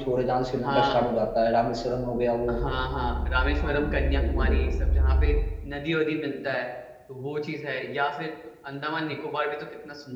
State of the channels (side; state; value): both; identical; correlation 1.00